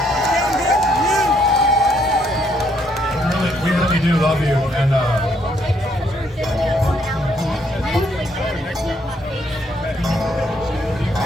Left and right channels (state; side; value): normal; both; correlation 0.70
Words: We really do love you, and